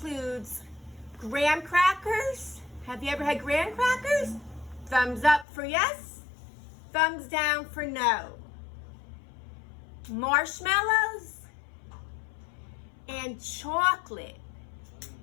graham crackers. Have you ever had graham crackers? Thumbs up for yes, thumbs down for no. Marshmallows and chocolate.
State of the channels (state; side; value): drops out; right; at 5.5 s